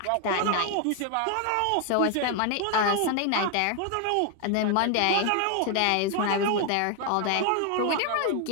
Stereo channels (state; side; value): different; both; correlation 0.00